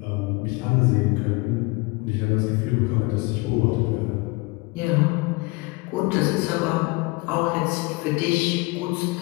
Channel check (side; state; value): right; quieter; 25.3 dB